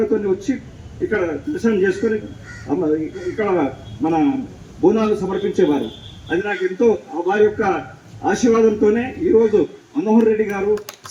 వచ్చి ఇక్కడ దర్శనం చేసుకొని ఇక్కడ మన బోనాలు సమర్పించేవారు. అది నాకు ఎంతో వారి యొక్క ఆశీర్వాదంతోనే ఈరోజు మనోహర్ రెడ్డి గారు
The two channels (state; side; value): identical; both; correlation 1.00